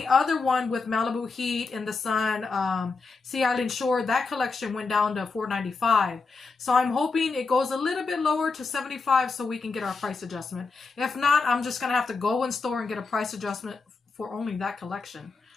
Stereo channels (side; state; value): right; quieter; 4.3 dB